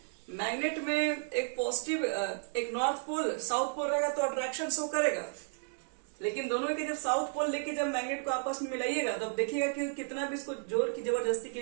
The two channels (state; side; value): silent; left; digital silence